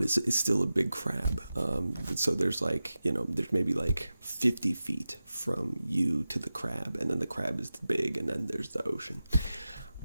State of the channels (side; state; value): both; inverted; correlation -0.94